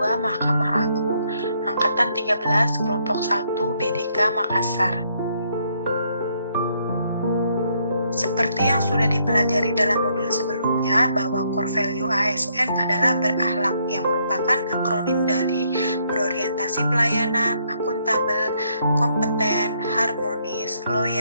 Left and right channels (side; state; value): both; inverted; correlation -0.72